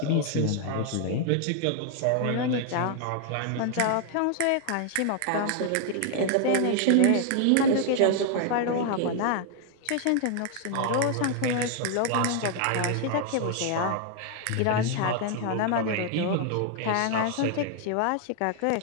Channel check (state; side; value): different; both; correlation 0.00